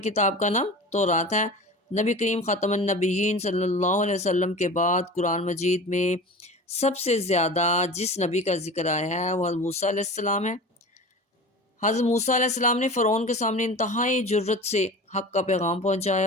کتاب کا نام تورات ہے۔ نبی کریم خاتم النبیین صلی اللہ علیہ وسلم کے بعد قرآن مجید میں سب سے زیادہ جس نبی کا ذکر آیا ہے وہ حضرت موسیٰ علیہ السلام ہے۔ حضرت موسیٰ علیہ السلام نے فرعون کے سامنے انتہائی جرت سے حق کا پیغام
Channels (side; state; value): both; normal; correlation 0.35